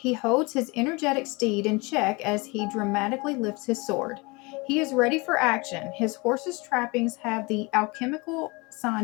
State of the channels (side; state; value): right; quieter; 26.7 dB